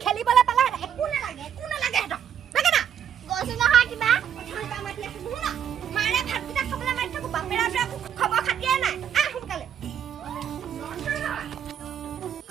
খেলিবলৈ পালে একো নালাগে হেতক লাগে না গৈছে নহয় কিবা অথনি বা মাতি আছো নুশুনা মাৰে ভাতকেইটা খাবলৈ মাতি থাকো বাপেৰা খবৰ খাতিয়ে নাই সোনকালে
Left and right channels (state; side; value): quieter; left; 8.9 dB